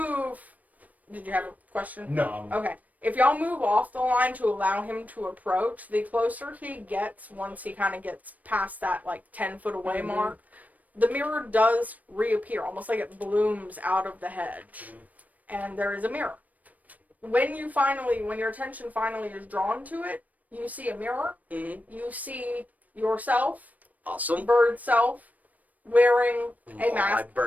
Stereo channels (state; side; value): late; left; 0.075 ms